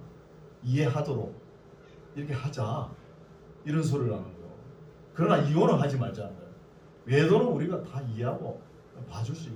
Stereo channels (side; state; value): both; identical; correlation 1.00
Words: 이해하도록 이렇게 하자, 이런 소리를 하는 거예요. 그러나 이혼은 하지 말자는 거예요. 외도는 우리가 다 이해하고 봐줄 수